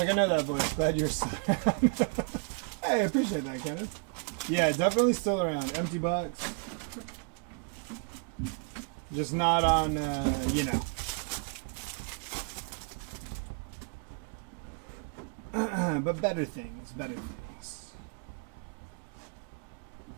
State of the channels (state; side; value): quieter; left; 36.6 dB